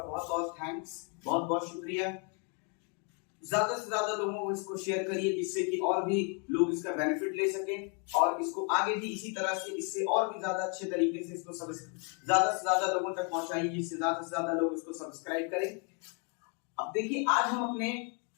बहुत बहुत थैंक्स, बहुत बहुत शुक्रिया। ज्यादा से ज्यादा लोगों को इसको शेयर करिए जिससे कि और भी लोग इसका बेनिफिट ले सकें और इसको आगे भी इसी तरह से इससे और भी ज्यादा अच्छे तरीके से इसको ज्यादा से ज्यादा लोगों तक पहुंचाइए जिससे ज्यादा से ज्यादा लोग इसको सब्सक्राइब करें। अब देखिए, आज हम अपने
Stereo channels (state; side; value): quieter; right; 37.3 dB